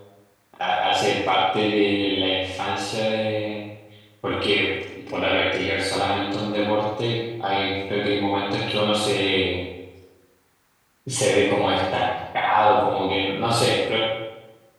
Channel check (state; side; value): identical; both; correlation 1.00